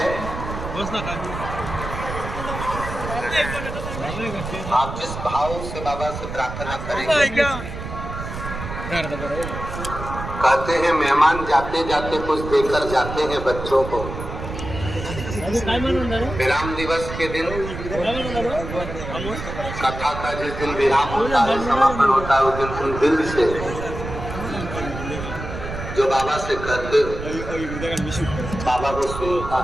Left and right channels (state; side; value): noise; right; rumble, 8 dB below the sound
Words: आप जिस भाव से बाबा से प्रार्थना करेंगे, कहते हैं मेहमान जाते जाते कुछ देकर जाते हैं बच्चों को। विराम दिवस के दिन कथा का जिस दिन विराम होता है, समापन होता है, उस दिन तुम दिल से जो बाबा से कहते हो, बाबा को सुनता